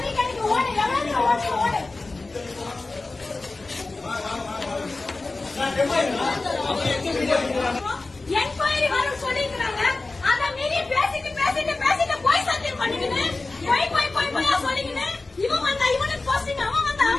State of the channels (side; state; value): right; quieter; 3.4 dB